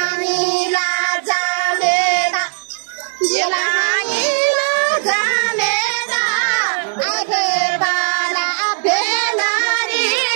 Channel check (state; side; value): silent; left; 68 dB below the other